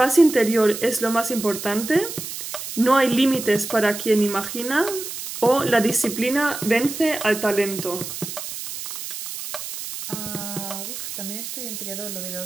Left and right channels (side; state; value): right; noise; hiss, 8 dB below the sound